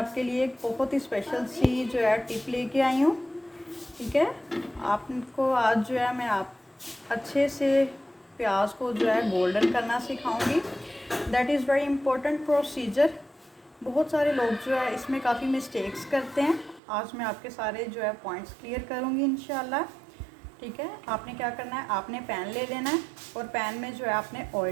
लिए एक बहुत ही स्पेशल सी जो है टिप लेके आई हूँ। ठीक है, आपको आज जो है मैं आप अच्छे से प्याज को जो है गोल्डन करना सिखाऊंगी। That is very important procedure. बहुत सारे लोग जो है इसमें काफ़ी मिस्टेक्स करते हैं। आज मैं आपके सारे जो है पॉइंट्स क्लियर करूँगी इंशाल्लाह। ठीक है, आपने क्या करना है, आपने पैन ले लेना है और पैन में जो है आपने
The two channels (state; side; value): drops out; left; at 16.8 s